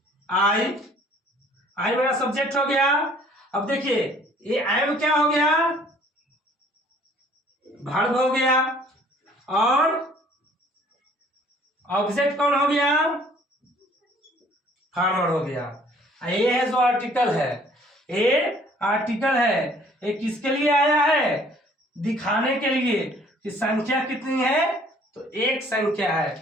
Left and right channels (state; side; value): normal; both; correlation 0.57